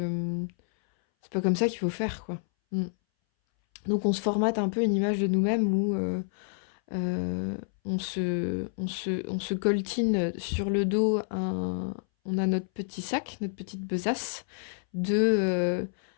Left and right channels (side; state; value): right; silent; 59 dB below the other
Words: faut faire, quoi. Mm. Donc on se formate un peu une image de nous-mêmes où on se coltine sur le dos on a notre petit sac, notre petite besace de